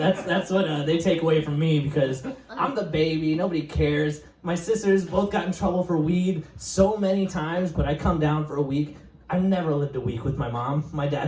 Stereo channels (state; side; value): identical; both; correlation 1.00